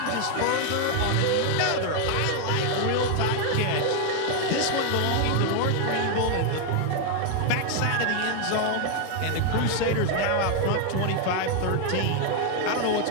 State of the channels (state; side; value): different; both; correlation 0.01